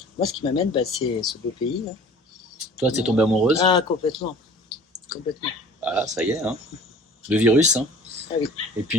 Moi, ce qui m'amène, c'est ce beau pays. Là. Toi, t'es tombée amoureuse? Ah, complètement. Complètement. Ah, ça y est, hein. Le virus, hein. Ah oui. Et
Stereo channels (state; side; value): normal; both; correlation 0.47